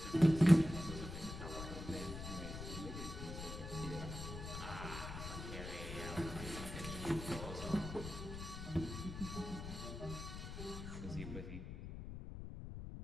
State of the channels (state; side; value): noise; left; rumble, 8 dB below the sound